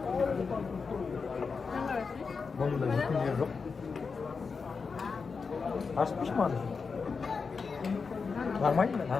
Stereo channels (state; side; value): quieter; right; 5.1 dB